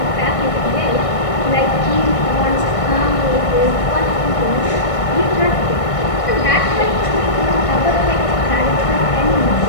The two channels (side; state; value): right; late; 1.6 ms